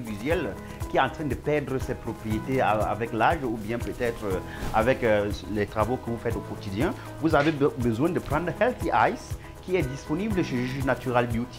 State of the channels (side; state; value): both; identical; correlation 1.00